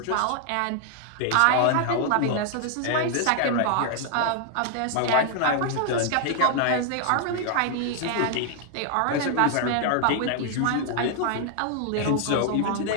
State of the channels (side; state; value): both; different; correlation 0.00